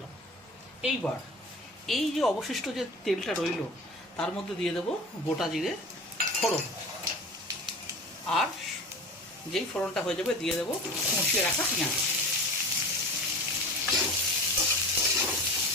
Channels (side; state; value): both; normal; correlation 0.35